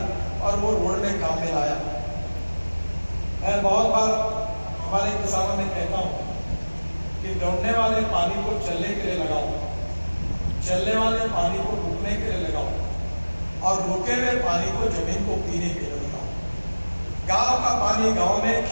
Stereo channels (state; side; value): inverted; both; correlation -1.00